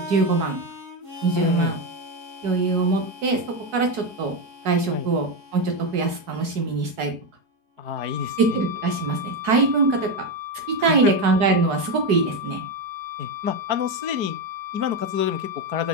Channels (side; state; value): left; late; 4.7 ms